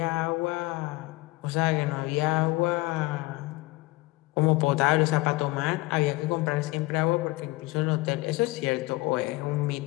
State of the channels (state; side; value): quieter; right; 21.5 dB